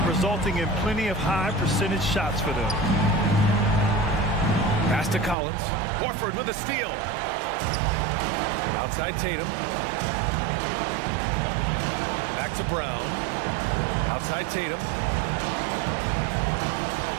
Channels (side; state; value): left; drops out; at 5.4 s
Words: resulting in plenty of high percentage shots for them. Pass to Collins. Horford with a steal. Outside Tatum. Back to Brown. Outside Tatum.